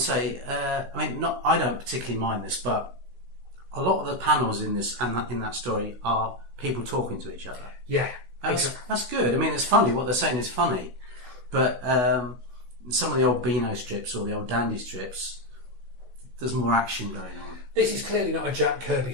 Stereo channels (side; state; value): left; late; 16 ms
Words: say, I don't particularly mind this, but a lot of the panels in this and in that story are people talking to each other. Yeah, that's good. I mean, it's funny. What they're saying is funny, but some of the old Beano strips or the old Dandy strips, there's more action going on. This is clearly not a Jack Kirby